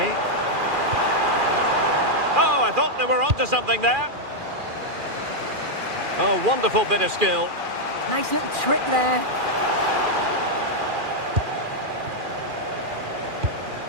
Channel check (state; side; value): late; left; 2.4 ms